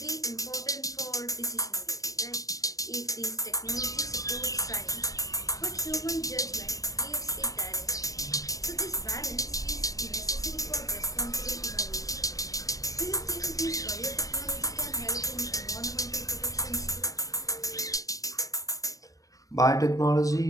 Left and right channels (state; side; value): late; right; 0.16 ms